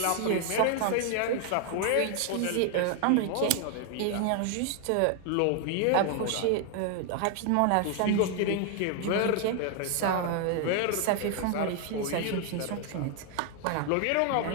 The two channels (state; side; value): different; both; correlation 0.00